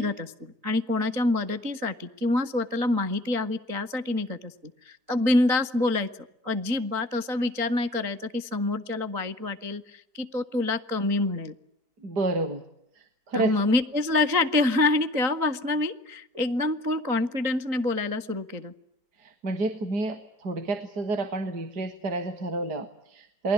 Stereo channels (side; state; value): left; late; 3.9 ms